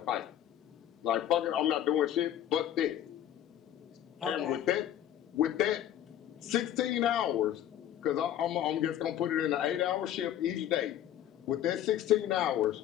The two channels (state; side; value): quieter; right; 11.1 dB